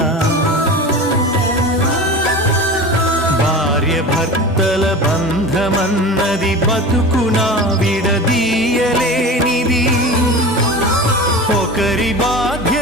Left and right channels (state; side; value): normal; both; correlation 0.32